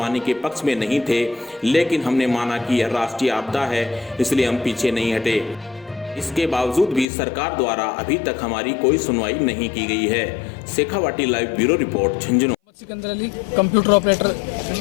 के पक्ष में नहीं थे, लेकिन हमने माना कि यह राष्ट्रीय आपदा है, इसलिए हम पीछे नहीं हटे। इसके बावजूद भी सरकार द्वारा अभी तक हमारी कोई सुनवाई नहीं की गई है। Shekhawati live bureau report, Jhunjhunu. Sikandar Ali, computer operator,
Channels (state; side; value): drops out; right; at 7.1 s